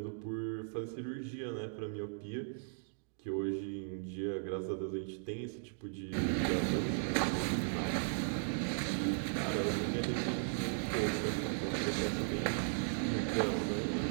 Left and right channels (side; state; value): left; silent; digital silence